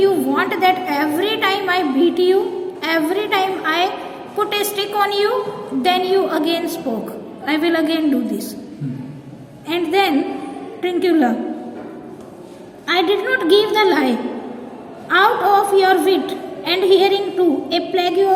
want that every time I beat you, every time I put a stick on you, then you again spoke. I will again do this. And then Trincula, I did not give the lie. Out of your wit and hearing too, a plague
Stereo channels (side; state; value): both; identical; correlation 1.00